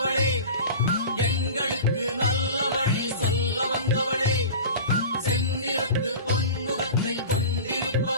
எங்களுக்கு நல்ல வழி சொல்ல வந்தவளே. செந்நிறத்து பொன்முகத்தை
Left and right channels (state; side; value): inverted; both; correlation -0.34